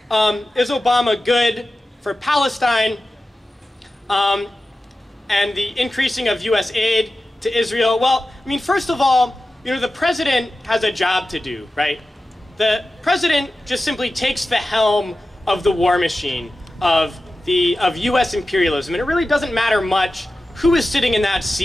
is Obama good for Palestine and the increasing of US aid to Israel? Well, I mean, first of all, the president has a job to do, right? The president just simply takes the helm of the war machine of US imperialism, and it really doesn't matter much who is sitting in that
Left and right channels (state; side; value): normal; both; correlation 0.94